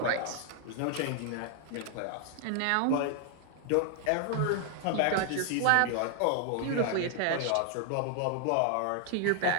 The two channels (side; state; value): both; different; correlation 0.00